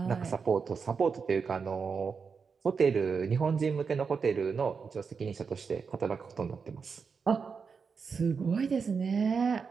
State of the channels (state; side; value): quieter; left; 5.6 dB